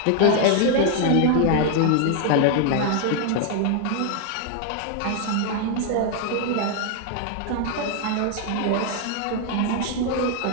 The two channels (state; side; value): different; both; correlation 0.00